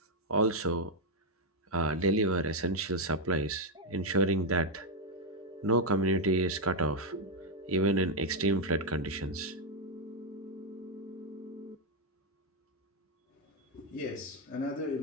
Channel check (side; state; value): both; normal; correlation 0.01